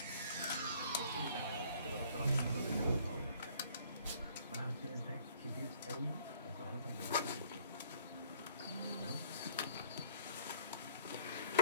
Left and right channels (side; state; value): both; inverted; correlation -0.56